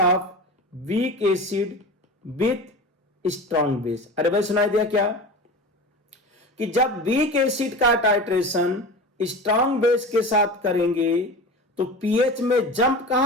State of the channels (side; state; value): both; normal; correlation 0.31